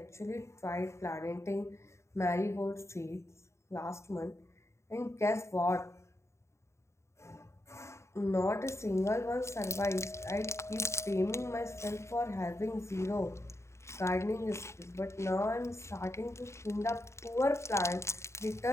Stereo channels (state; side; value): late; right; 0.14 ms